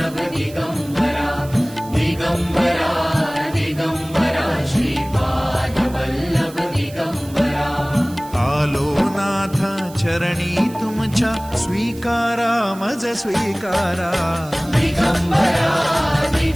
दिगंबरा दिगंबरा दिगंबरा श्रीपादवल्लभ दिगंबरा आलो नाथ चरणी तुमच्या स्वीकारा मज स्वीकारा दिगंबरा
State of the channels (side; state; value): right; noise; hiss, 20 dB below the sound